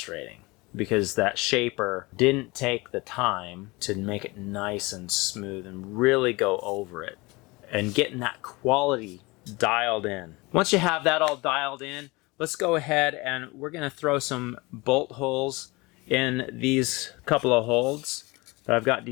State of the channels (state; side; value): quieter; right; 24.3 dB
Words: because that shaper didn't take the time to make it nice and smooth and really go over it and getting that quality dialed in. Once you have that all dialed in, let's go ahead and we're going to throw some bolt holes in these couple of holds that I've got